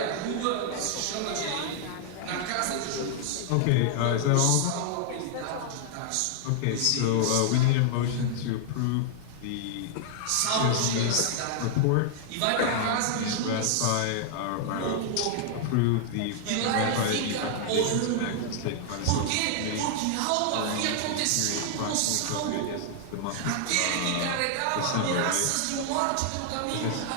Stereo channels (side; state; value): both; different; correlation -0.01